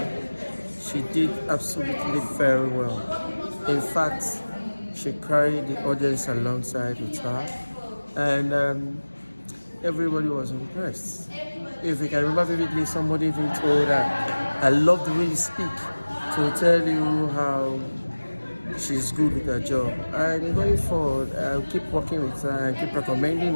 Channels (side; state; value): both; inverted; correlation -1.00